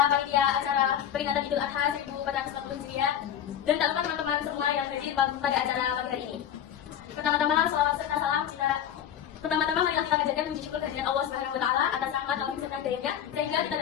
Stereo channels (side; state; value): right; quieter; 9.7 dB